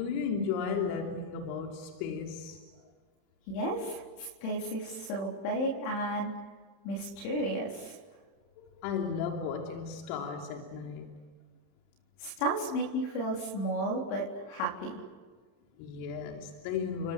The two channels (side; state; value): right; late; 31 ms